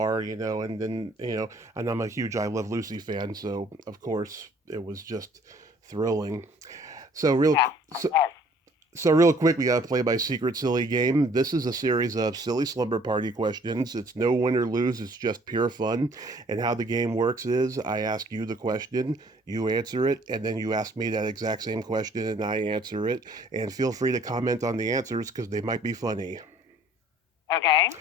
and then and I'm a huge I Love Lucy fan, so of course it was just thrilling. So real quick, we gotta play my secret silly game. This is a series of silly slumber party questions. It's no win or lose, it's just pure fun. And how the game works is I ask you the question, you answer it, and then you ask me that exact same question and I answer it. And feel free to comment on the answers because they might be funny. Okay.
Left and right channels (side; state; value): both; normal; correlation 0.57